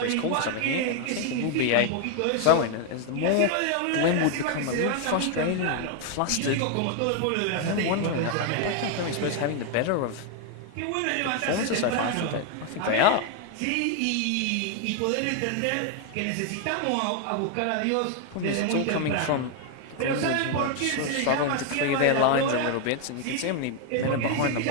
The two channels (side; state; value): both; different; correlation 0.01